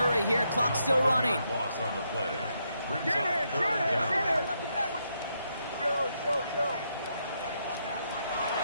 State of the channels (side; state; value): both; inverted; correlation -0.78